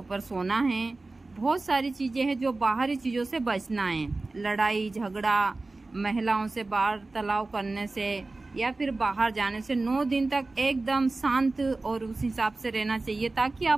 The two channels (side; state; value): left; quieter; 3.3 dB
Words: सोना है। बहुत सारी चीज़ें हैं जो बाहरी चीज़ों से बचना है, लड़ाई झगड़ा, महिलाओं से वार्तालाप करने से या फिर बाहर जाने से 9 दिन तक एकदम शांत और उस हिसाब से रहना चाहिए ताकि